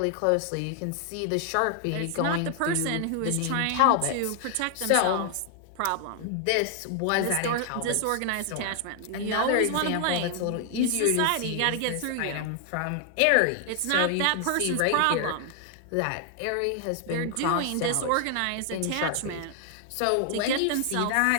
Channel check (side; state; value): both; different; correlation 0.00